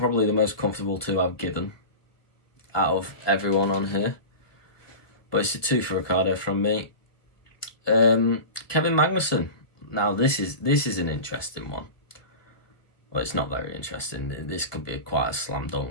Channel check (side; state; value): right; late; 1.2 ms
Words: the most comfortable 2 I've given out of everyone on here. But it's a 2 for Ricciardo from me. Kevin Magnussen. Now this is an interesting one. Well, it's not very interesting. This could be quite a slam